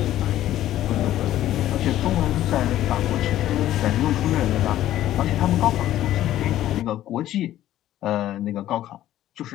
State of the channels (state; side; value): quieter; right; 13.2 dB